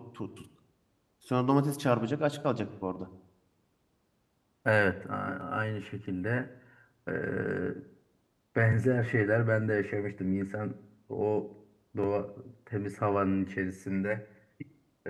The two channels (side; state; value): both; identical; correlation 1.00